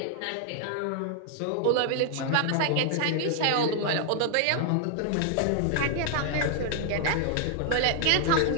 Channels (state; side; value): different; both; correlation 0.00